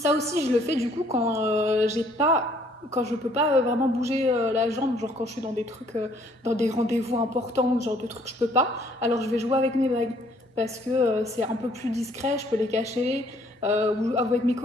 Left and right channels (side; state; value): both; normal; correlation 0.62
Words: aussi, je le fais du coup quand quand je peux pas vraiment bouger la jambe, genre quand je suis dans des trucs, dans des rendez-vous importants, genre de trucs que je peux pas, alors je vais jouer avec mes bagues parce que c'est un peu plus discret, je peux les cacher, ou avec mes